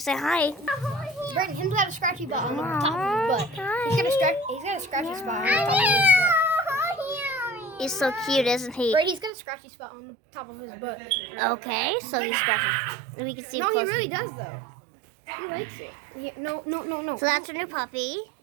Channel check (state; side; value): drops out; left; at 9.3 s